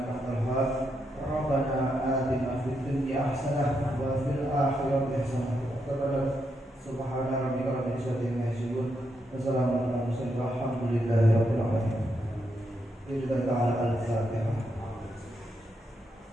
antal wahhab. Rabbana atina fid dunya hasanah wa fil akhirati hasanah wa qina subhana rabbika rabbil izzati amma yasifun wa salamun alal mursalin walhamdulillahi rabbil alamin. Bismillah ta'ala al-Fatihah.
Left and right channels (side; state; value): both; normal; correlation 0.81